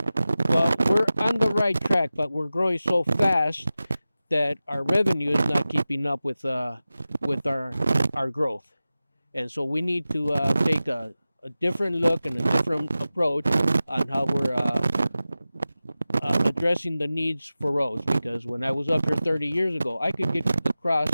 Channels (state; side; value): inverted; both; correlation -0.95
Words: Well, we're on the right track, but we're growing so fast that our revenue is not keeping up with our growth. And so we need to take a different look and a different approach on how we're addressing the needs for roads, because when I was up here 30 years ago, I could get across